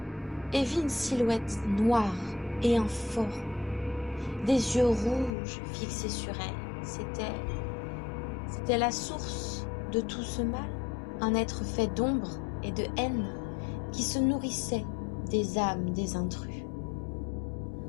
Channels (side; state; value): right; drops out; at 5.4 s